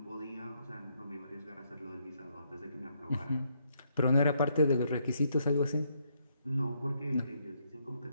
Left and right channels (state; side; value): inverted; both; correlation -0.74